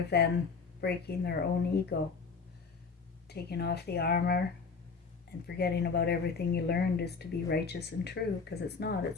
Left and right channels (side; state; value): right; quieter; 4.9 dB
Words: than breaking their own ego, taking off the armor and forgetting about everything you learned is to be righteous and true, because it's not.